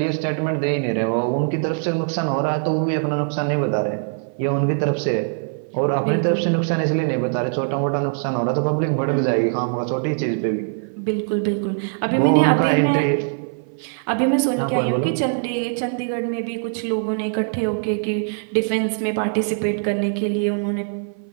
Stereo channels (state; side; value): silent; left; 56 dB below the other